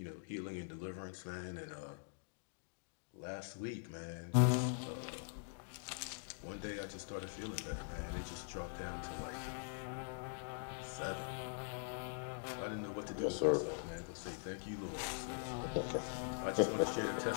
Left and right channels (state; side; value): silent; right; digital silence